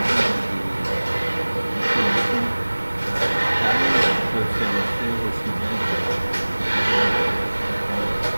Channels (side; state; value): both; inverted; correlation -1.00